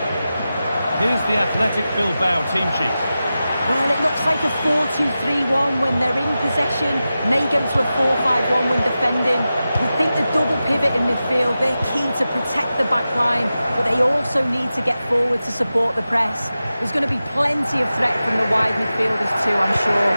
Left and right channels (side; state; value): both; inverted; correlation -0.93